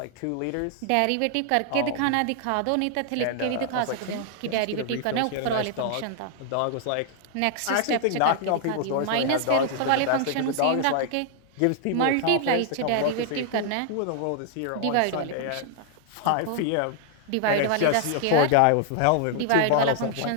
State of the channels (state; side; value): different; both; correlation 0.00